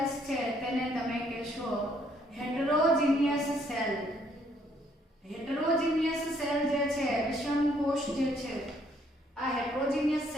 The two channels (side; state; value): both; normal; correlation 0.68